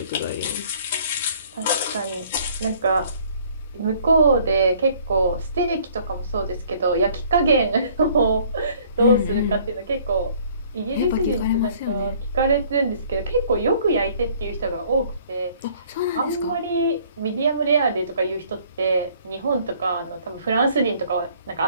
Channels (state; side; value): inverted; both; correlation -0.58